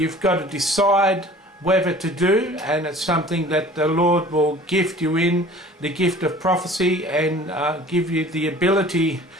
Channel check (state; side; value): normal; both; correlation 0.47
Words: got to decide whether to do, and it's something that the Lord will gift you in the gift of prophecy and give you the ability